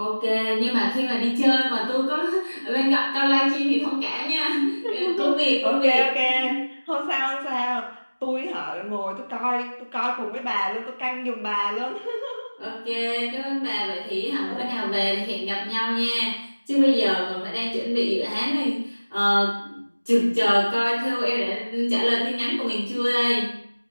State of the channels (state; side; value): inverted; both; correlation -1.00